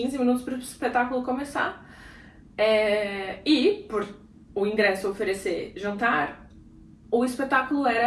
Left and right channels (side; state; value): both; identical; correlation 1.00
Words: minutos para o espetáculo começar. E, por o ingresso oferecer jantar, o espetáculo era